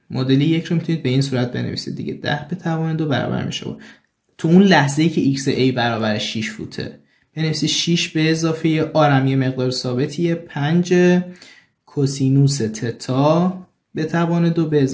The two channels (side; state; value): both; identical; correlation 1.00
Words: معادله 1 رو میتونید به این صورت بنویسید دیگه، 10 به توان 2 برابر میشه تو اون لحظه‌ای که xa برابر 6 فوته بنویسید 6 به اضافه آرم یه مقدار ثابتیه 5 کوسینوس تتا به توان 2 به